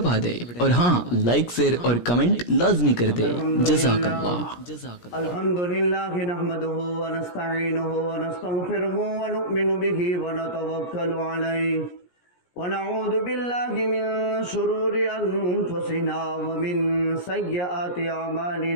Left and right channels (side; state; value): right; late; 17 ms